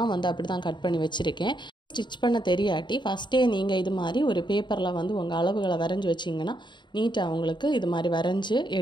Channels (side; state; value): right; late; 0.22 ms